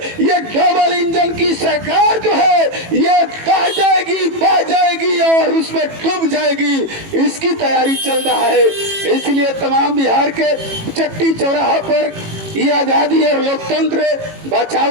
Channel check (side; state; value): left; late; 18 ms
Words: ये डबल इंजन की सरकार जो है ये बह जाएगी, बह जाएगी और उसमें डूब जाएगी, इसकी तैयारी चल रहा है। इसलिए तमाम बिहार के चट्टी चौराहा पर ये आजादी और लोकतंत्र